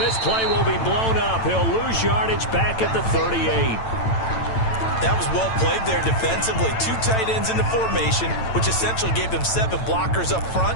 this play will be blown up. He'll lose yardage back at the 38. That was well played there defensively. 2 tight ends in the formation, which essentially gave them 7 blockers up front.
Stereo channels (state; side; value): late; right; 9.0 ms